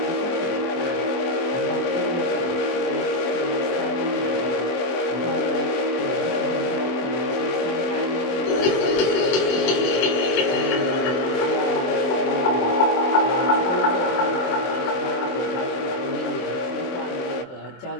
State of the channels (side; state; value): right; late; 23 ms